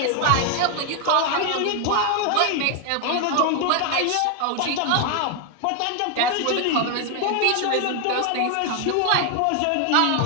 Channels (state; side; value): different; both; correlation 0.01